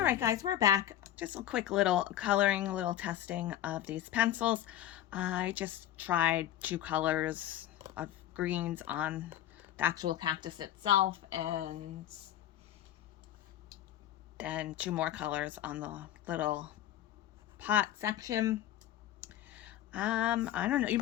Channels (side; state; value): right; quieter; 12.1 dB